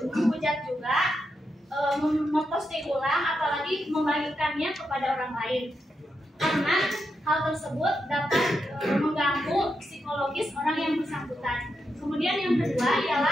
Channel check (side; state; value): both; normal; correlation 0.85